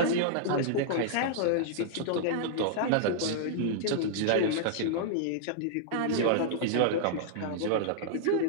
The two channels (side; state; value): both; different; correlation -0.01